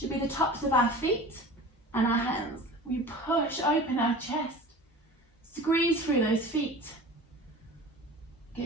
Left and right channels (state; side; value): normal; both; correlation 0.39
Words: be the tops of our feet and our hands. We push open our chest, squeeze through those feet,